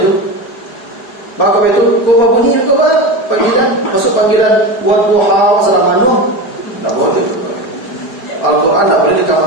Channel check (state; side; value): late; right; 4.8 ms